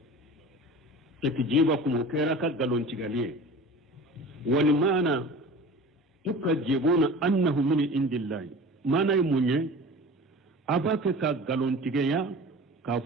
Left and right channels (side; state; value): both; normal; correlation 0.38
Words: تكذيبكم وكيرا أكا غلون تغيالي ولمانا tukajibuna annahu min indillahi mana munye abake ka galontigeya ka